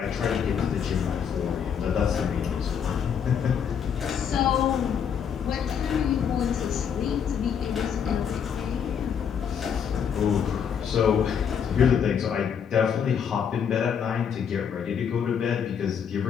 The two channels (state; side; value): quieter; right; 7.6 dB